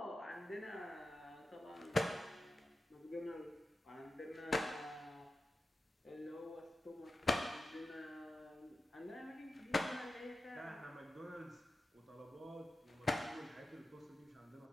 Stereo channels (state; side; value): normal; both; correlation 0.91